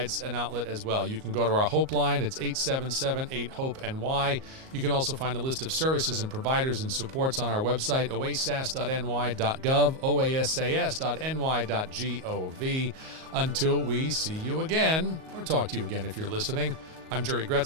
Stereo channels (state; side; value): late; left; 38 ms